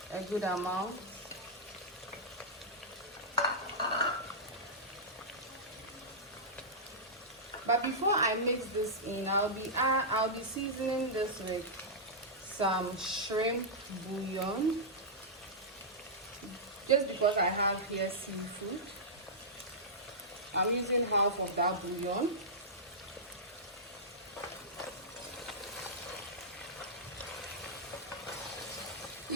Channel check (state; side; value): normal; both; correlation -0.13